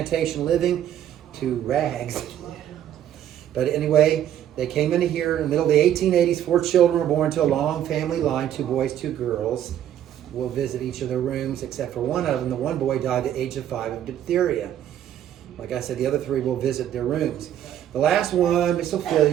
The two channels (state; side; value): quieter; left; 10.9 dB